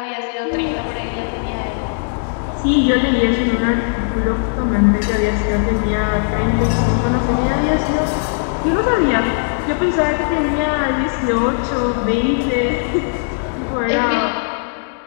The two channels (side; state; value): right; silent; digital silence